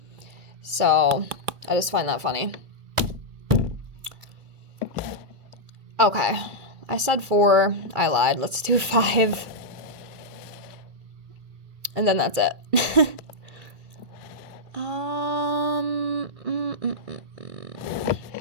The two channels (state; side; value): late; left; 2.3 ms